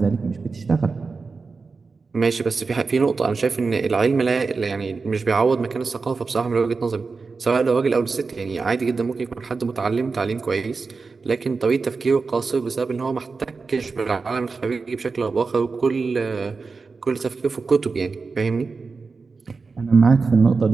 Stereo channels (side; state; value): left; quieter; 4.5 dB